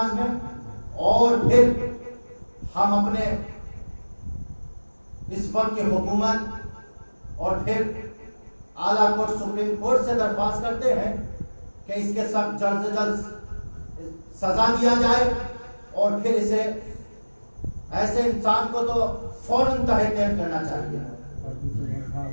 میں. اور پھر ہم اپنے اس وقت کی حکومت اور پھر اعلیٰ کورٹ سپریم کورٹ سے درخواست کرتے ہیں کہ اس کے سخت جلد سے جلد سزا دیا جائے, اور پھر اسے ایسے انسان کو تو فوراً تحریر کرنا چاہیے.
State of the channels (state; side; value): inverted; both; correlation -1.00